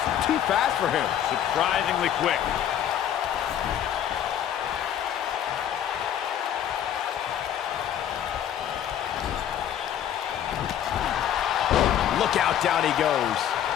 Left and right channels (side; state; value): right; quieter; 10.2 dB